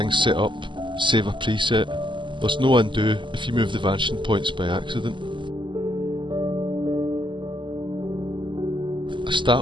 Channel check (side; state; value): left; late; 0.24 ms